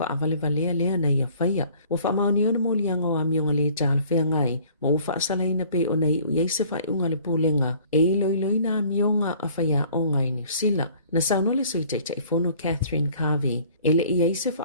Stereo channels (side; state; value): both; inverted; correlation -0.54